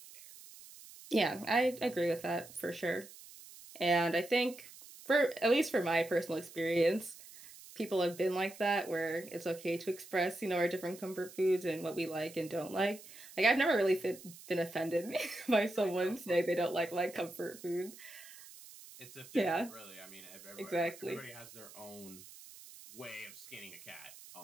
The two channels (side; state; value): right; noise; hiss, 18 dB below the sound